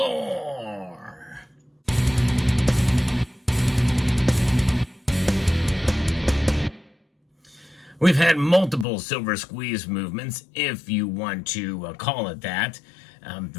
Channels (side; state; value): right; drops out; at 8.8 s